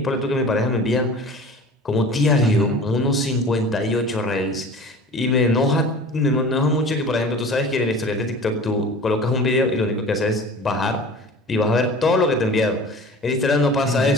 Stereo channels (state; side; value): normal; both; correlation 0.40